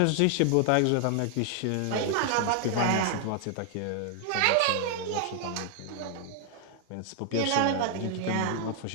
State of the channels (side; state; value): both; different; correlation 0.00